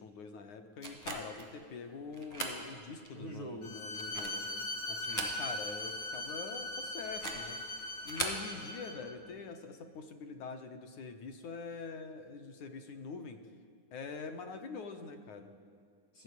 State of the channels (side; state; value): right; late; 9.6 ms